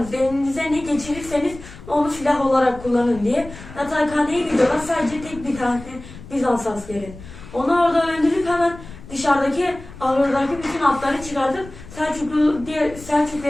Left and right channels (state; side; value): noise; left; rumble, 16 dB below the sound